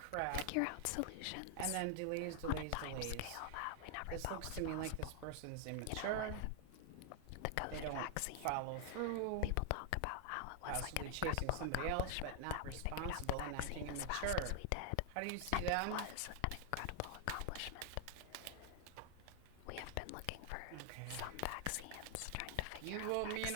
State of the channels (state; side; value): different; both; correlation 0.00